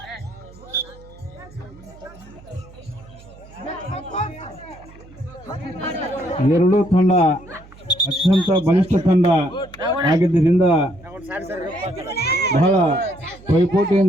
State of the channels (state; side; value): noise; right; hum, 22 dB below the sound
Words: ಎರಡೂ ತಂಡ ಅತ್ಯಂತ ಬಲಿಷ್ಠ ತಂಡ ಆಗಿದ್ದರಿಂದ ಬಹಳ